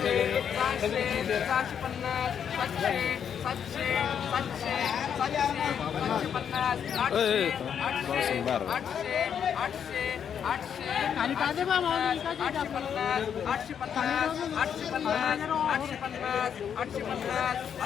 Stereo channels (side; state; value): right; quieter; 8.1 dB